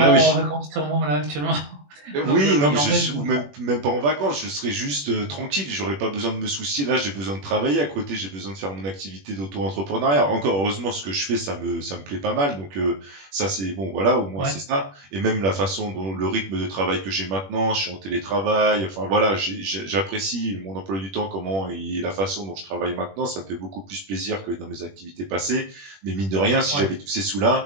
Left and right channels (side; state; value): left; late; 21 ms